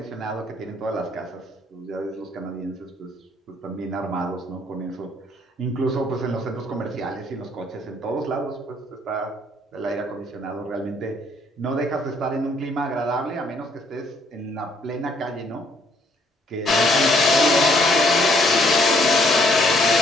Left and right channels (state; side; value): normal; both; correlation 0.66